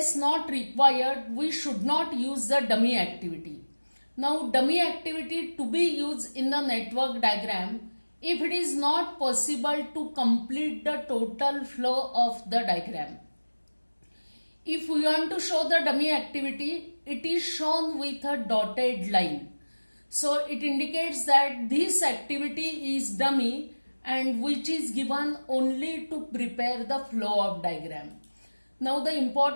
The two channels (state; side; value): inverted; both; correlation -1.00